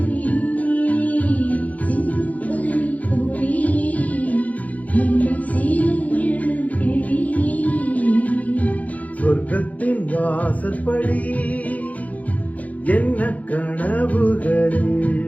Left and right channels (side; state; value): right; late; 0.073 ms